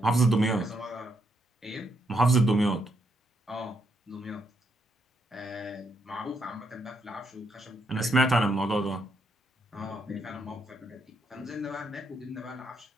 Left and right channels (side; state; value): both; normal; correlation 0.77